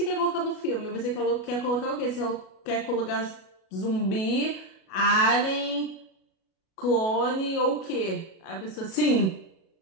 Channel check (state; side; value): late; right; 37 ms